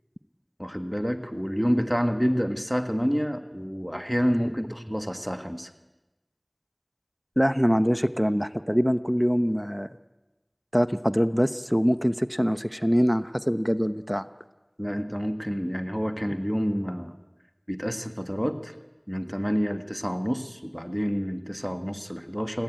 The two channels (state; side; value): identical; both; correlation 1.00